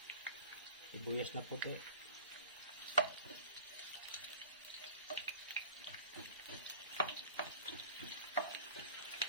Sibuyas na puti.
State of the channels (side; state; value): both; inverted; correlation -0.42